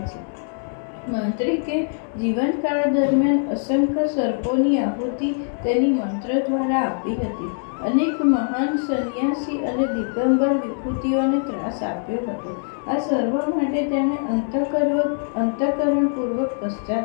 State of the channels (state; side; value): silent; right; digital silence